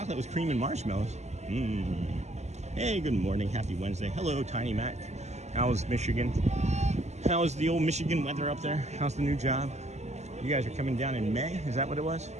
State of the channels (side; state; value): left; late; 0.33 ms